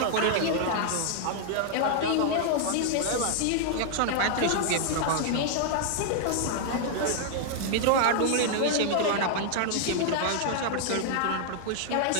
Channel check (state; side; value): different; both; correlation -0.01